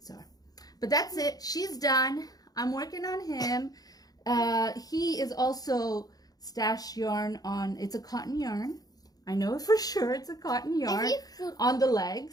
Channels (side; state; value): right; late; 0.18 ms